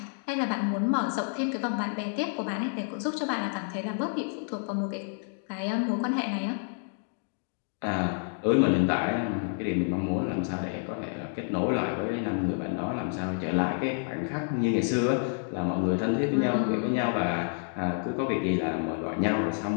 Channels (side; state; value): right; silent; 59 dB below the other